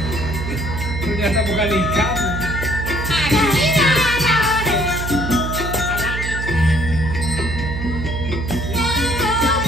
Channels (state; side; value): noise; right; hum, 5 dB below the sound